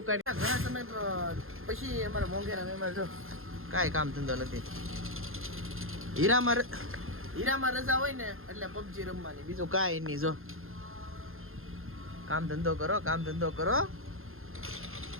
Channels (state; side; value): late; left; 0.60 ms